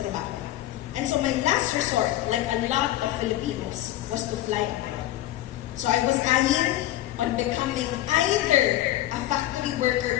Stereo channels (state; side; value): quieter; right; 14.7 dB